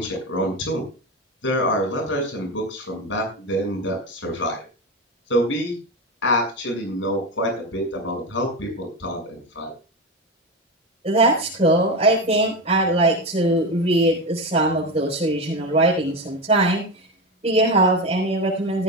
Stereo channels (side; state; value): both; normal; correlation 0.18